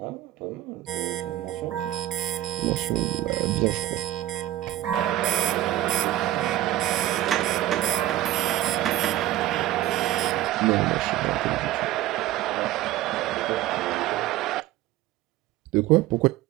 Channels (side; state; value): left; quieter; 14.4 dB